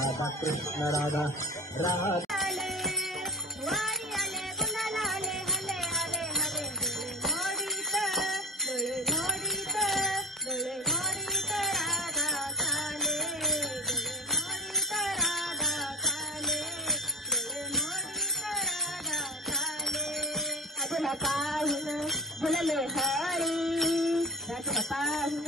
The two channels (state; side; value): normal; both; correlation 0.31